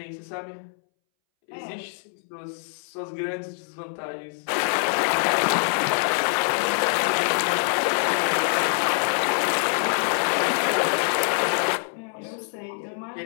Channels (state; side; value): silent; right; 62 dB below the other